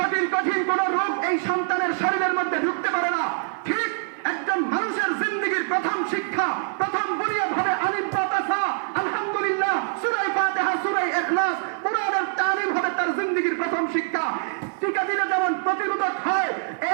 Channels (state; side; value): silent; left; 55 dB below the other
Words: কঠিন কোন রোগ এই সন্তানের শরীরের মধ্যে ঢুকতে পারে না, ঠিক একজন মানুষের জিন্দেগীর প্রথম শিক্ষা, প্রথম বুনিয়াদ হবে আলিফ বা তা সা, আলহামদুলিল্লাহ, সূরা ফাতিহা, সূরা ইখলাস, কোরআনের তালিম হবে তার জিন্দেগীর প্রথম শিক্ষা। টিকা দিলে যেমন প্রতিরোধক হয়,